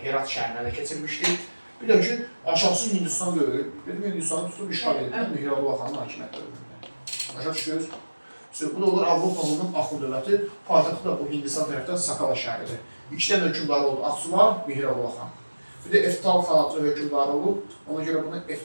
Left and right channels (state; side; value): inverted; both; correlation -1.00